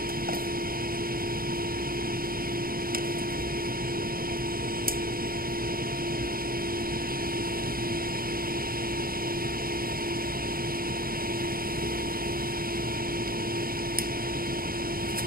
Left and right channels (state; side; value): late; left; 0.42 ms